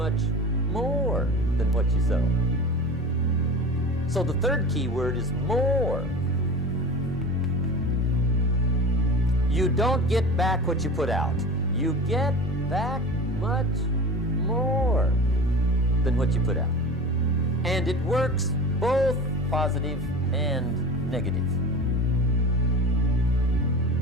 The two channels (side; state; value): both; normal; correlation 0.33